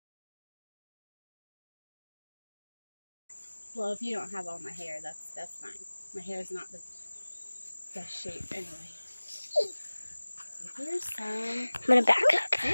Well, if you don't have all my hair, that's fine. My hair is not the best shape anyway. So here's some. I'm gonna back up.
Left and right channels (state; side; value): inverted; both; correlation -1.00